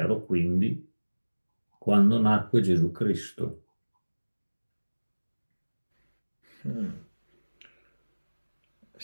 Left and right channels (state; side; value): inverted; both; correlation -1.00